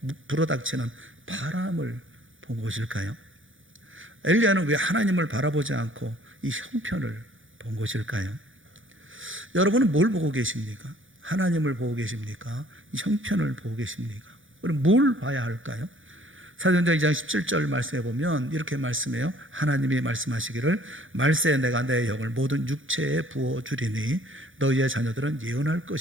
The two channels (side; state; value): left; late; 0.58 ms